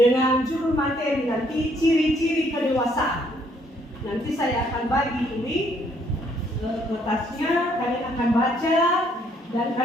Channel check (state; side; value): normal; both; correlation 0.67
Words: judul materi nanti ciri-ciri kedewasaan. Nanti saya akan bagi ini kertasnya, kalian akan baca dan